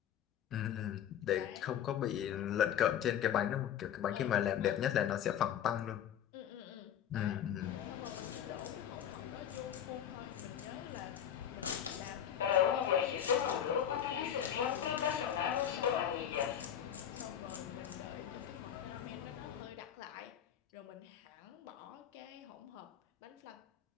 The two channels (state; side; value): quieter; right; 9.7 dB